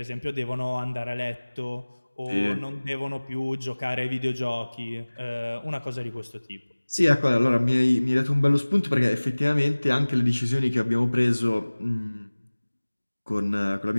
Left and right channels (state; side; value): inverted; both; correlation -1.00